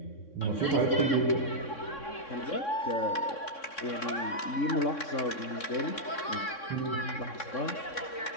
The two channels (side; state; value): right; late; 3.6 ms